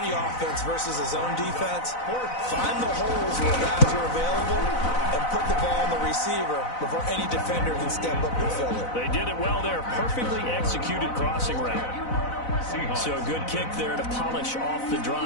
offense versus his own defense, find the holes where guys are available and put the ball on the receiver before any defender can step up and fill it. They did it well there. Perfectly executed crossing route. So a good kick there to polish off the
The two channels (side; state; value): right; late; 4.0 ms